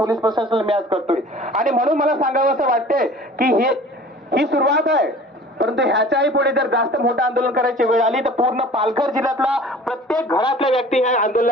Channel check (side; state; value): both; normal; correlation 0.45